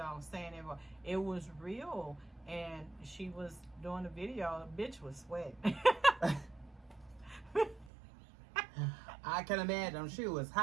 saying it was real. And she was doing the video, the bitch was sweating. I can imagine. She was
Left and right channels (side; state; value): left; drops out; at 7.9 s